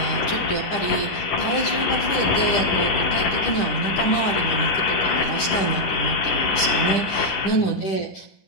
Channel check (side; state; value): right; late; 10 ms